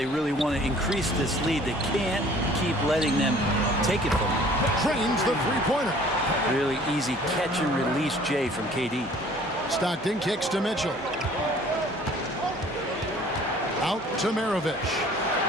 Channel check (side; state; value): both; normal; correlation 0.53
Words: really want to increase this lead. They can't keep letting them take it from them. Trains the three-pointer. Really easy catch and release Jay from KD. Stockton kicks to Mitchell. Out to Maravich.